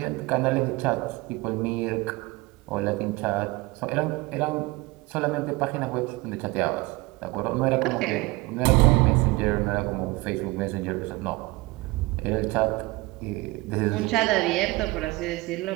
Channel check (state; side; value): quieter; left; 22.0 dB